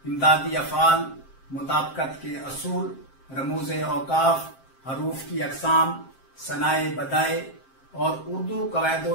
इमदादी अफ़ाल, मुताबकत के असूल, रमूज़े औकाफ, हरूफ की अक़साम, सनाए बदाए और उर्दू कवायद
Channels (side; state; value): right; late; 7.5 ms